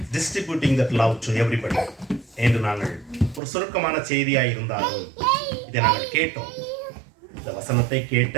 distributing that love to everybody என்று நாங்கள் ஒரு சுருக்கமான செய்தியாக இருந்தாலும் இதை நாங்கள் கேட்டோம். இந்த வசனத்தை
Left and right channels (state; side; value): drops out; left; at 3.4 s